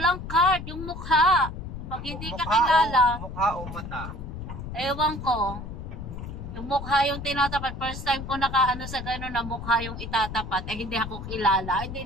card, yung mukha. Pag hindi ka kilala, Mukha o mata? ewan ko. Yung mukha yung tinatapat. First time ko nakaano sa gano'n na mukha yung itatapat. Eh, hindi ako kilala.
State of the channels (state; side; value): noise; left; rumble, 9 dB below the sound